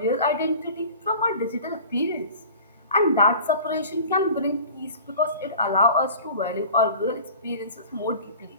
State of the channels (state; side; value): inverted; both; correlation -0.41